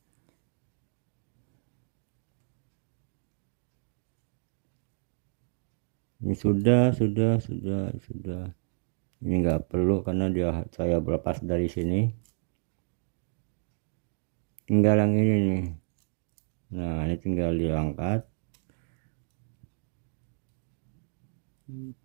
Ini sudah. Ini nggak perlu karena saya berlepas dari sini. Tinggal yang ini nih. Nah ini tinggal diangkat.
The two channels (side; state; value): left; silent; digital silence